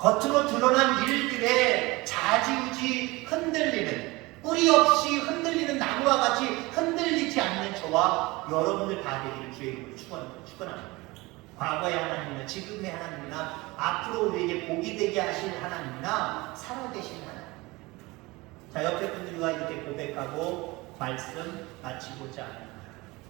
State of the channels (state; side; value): quieter; left; 22.6 dB